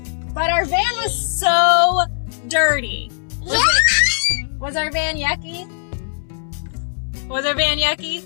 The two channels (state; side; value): silent; right; digital silence